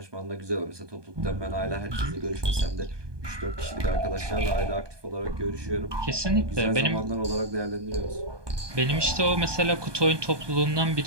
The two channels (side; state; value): left; late; 1.2 ms